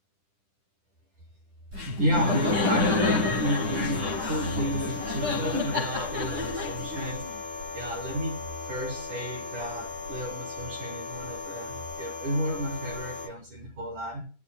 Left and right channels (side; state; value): left; late; 10 ms